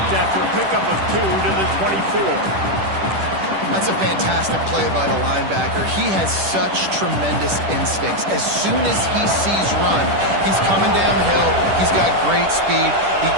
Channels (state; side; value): late; left; 10 ms